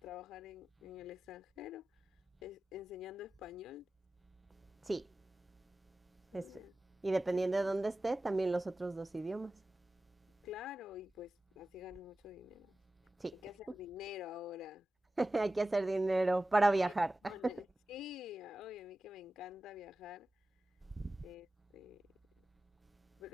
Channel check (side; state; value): both; normal; correlation 0.94